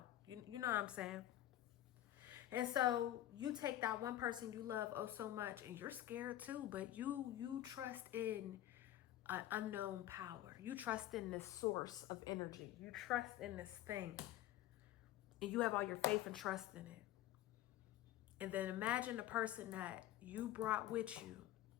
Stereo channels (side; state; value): right; quieter; 13.6 dB